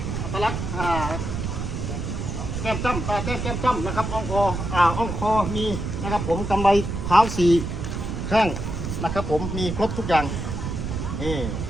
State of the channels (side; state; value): right; noise; rumble, 4 dB below the sound